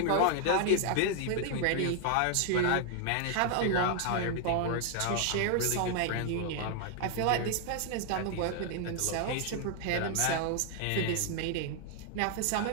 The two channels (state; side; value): different; both; correlation 0.00